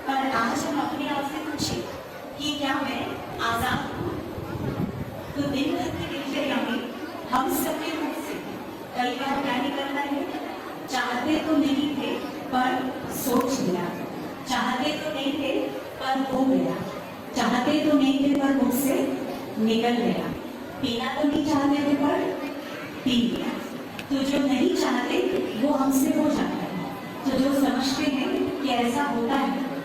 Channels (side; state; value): both; identical; correlation 1.00